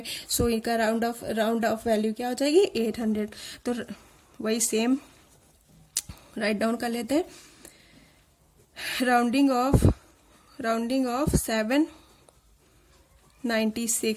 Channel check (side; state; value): both; identical; correlation 1.00